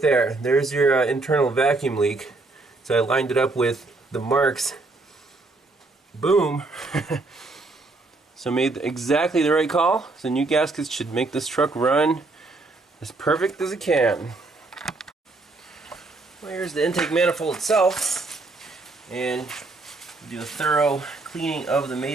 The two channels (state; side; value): quieter; left; 3.3 dB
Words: there, there's your internal vacuum leak. So I lined it up with the marks. Boom. So made exactly the right call. So new gaskets should make this truck run as perfect as it can. Well, here's the intake manifold itself, and do a thorough cleaning of the